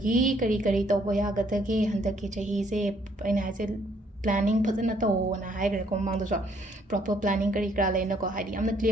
ꯀꯔꯤ ꯇꯧꯕ ꯌꯥꯒꯗꯒꯦ ꯍꯟꯗꯛꯀꯤ ꯆꯍꯤꯁꯦ ꯑꯩꯅ ꯍꯥꯏꯁꯦ ꯄ꯭ꯂꯥꯅꯤꯡꯐꯖꯅ ꯇꯧꯋꯣꯅ ꯍꯥꯏꯈ꯭ꯔꯦꯀꯣ ꯃꯃꯥꯡꯗꯁꯨ ꯄ꯭ꯔꯣꯄꯔ ꯄ꯭ꯂꯥꯅꯤꯡ ꯀꯔꯤ ꯀꯔꯥ ꯂꯩꯅꯀꯣ ꯍꯥꯏꯗꯤ ꯌꯥꯝꯅ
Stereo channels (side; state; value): both; normal; correlation 0.66